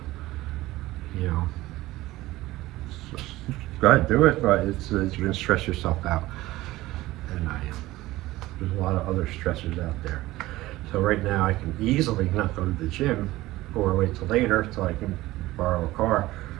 Go ahead, do it, but it's you're gonna stress yourself out, and there's a lot of other stressors out there. So right now I can easily not go to the gym, or wait till later till I can borrow a car,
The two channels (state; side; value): quieter; left; 17.6 dB